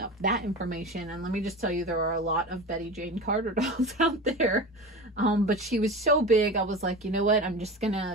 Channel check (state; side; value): normal; both; correlation 0.29